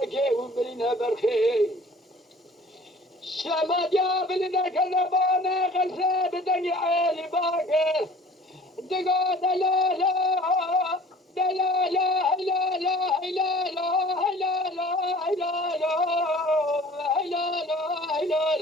و برینه برخه شمادیا فلیته کلبانه قلسه بدنی عیلی باکر دقا دلالا دلالا هلالا هلالا هلالا هلالا هلالا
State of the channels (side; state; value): both; normal; correlation 0.48